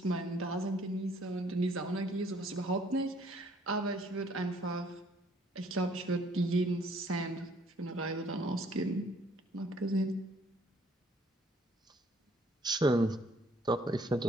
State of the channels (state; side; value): normal; both; correlation 0.62